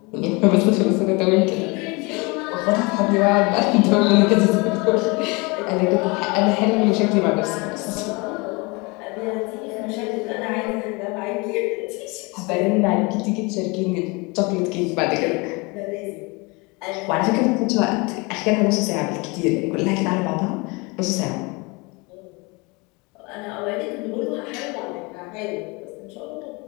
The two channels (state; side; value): quieter; right; 27.3 dB